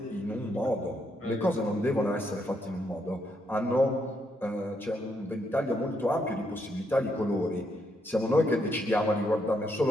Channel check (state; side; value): normal; both; correlation 0.77